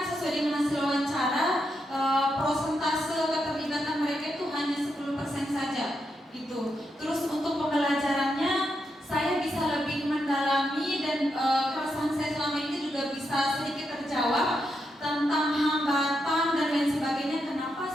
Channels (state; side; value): normal; both; correlation 0.83